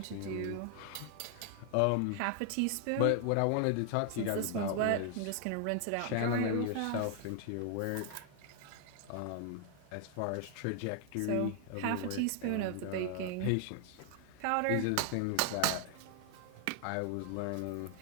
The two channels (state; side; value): different; both; correlation 0.00